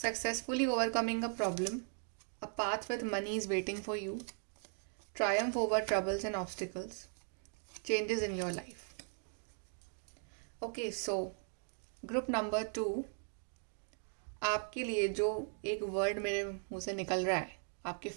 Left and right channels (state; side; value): silent; left; 52 dB below the other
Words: overcoming a problem, a path with money is waiting for you, triumph over troubles and obstacles, changes in your life. Okay, so group number 2, आपके लिए जो एक वर्ड मेरे मुंह से निकल रहा है आपके